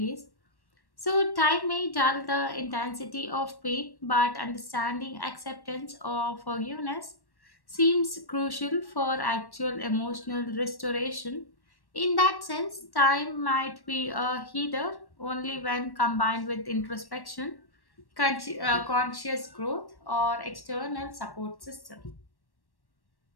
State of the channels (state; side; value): late; right; 1.1 ms